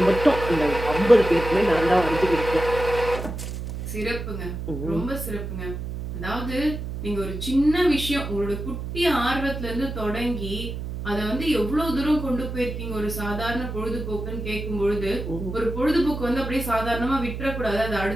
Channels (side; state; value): right; noise; hum, 6 dB below the sound